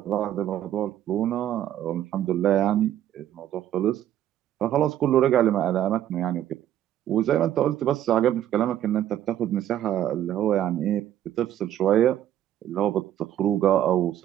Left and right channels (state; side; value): quieter; left; 11.6 dB